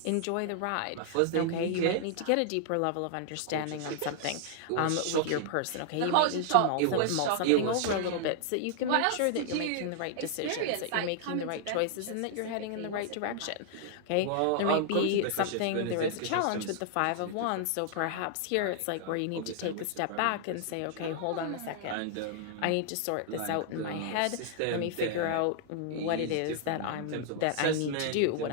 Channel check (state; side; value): different; both; correlation -0.01